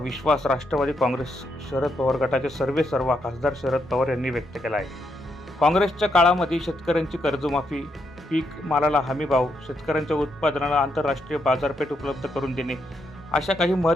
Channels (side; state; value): both; normal; correlation 0.79